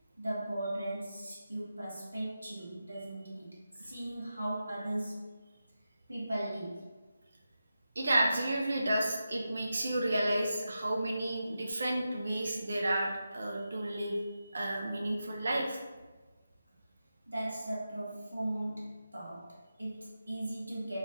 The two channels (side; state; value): both; inverted; correlation -0.90